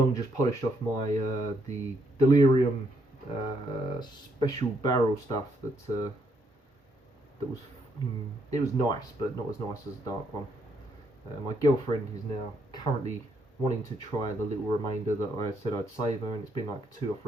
just polished off my the Delirium special barrel stuff that was it was nice, but not as nice as the dark one. My girlfriend is now currently wanting to try the little remainder that I said I'd save her, and it's been like 2 or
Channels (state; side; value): normal; both; correlation 0.74